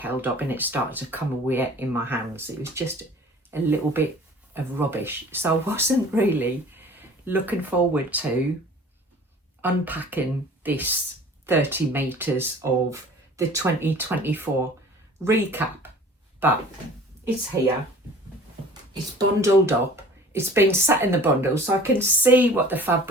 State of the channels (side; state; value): both; normal; correlation 0.46